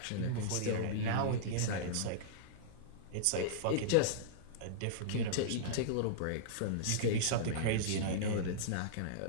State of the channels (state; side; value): different; both; correlation -0.03